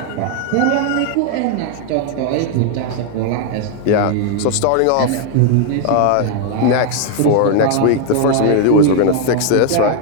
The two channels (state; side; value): different; both; correlation 0.00